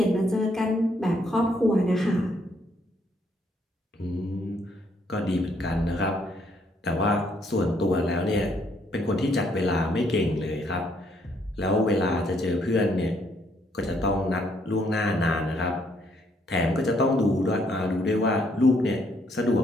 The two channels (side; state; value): both; normal; correlation 0.70